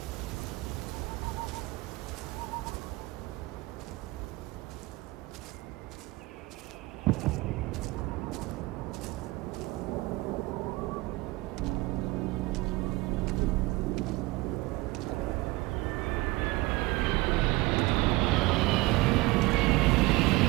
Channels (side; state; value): left; quieter; 21.7 dB